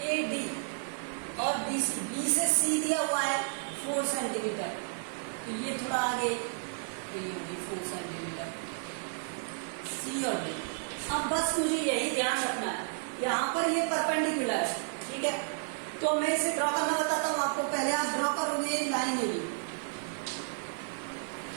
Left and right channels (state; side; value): silent; left; digital silence